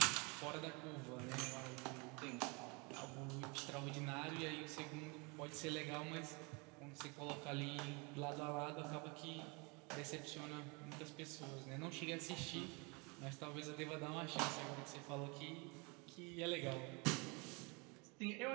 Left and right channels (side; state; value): left; quieter; 29.9 dB